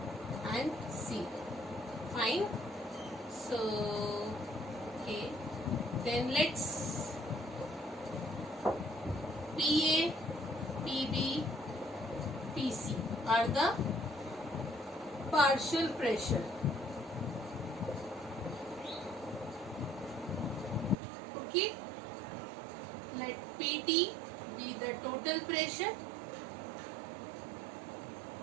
and C. Fine. So okay. Then let's PA, PB, PC are the partial pressure. Okay. Let PT be the total pressure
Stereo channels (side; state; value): left; drops out; at 21.0 s